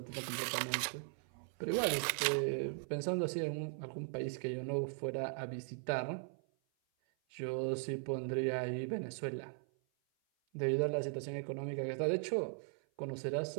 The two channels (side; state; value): left; silent; 52 dB below the other